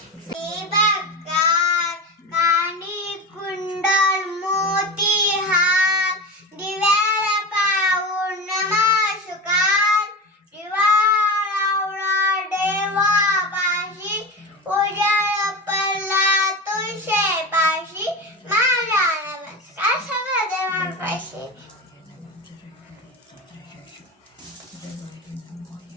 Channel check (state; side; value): normal; both; correlation 0.25